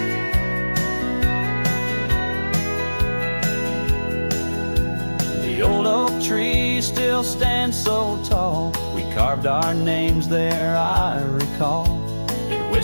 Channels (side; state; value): both; inverted; correlation -1.00